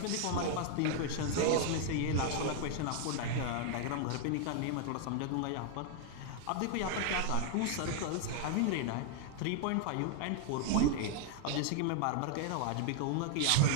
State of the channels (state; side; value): different; both; correlation 0.00